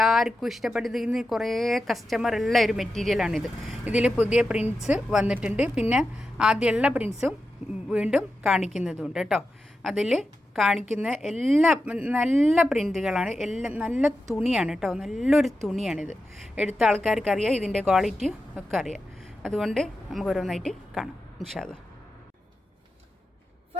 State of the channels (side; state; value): both; normal; correlation 0.90